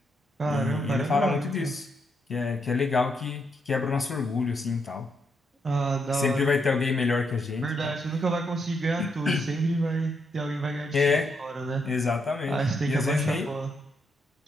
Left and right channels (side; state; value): both; normal; correlation 0.78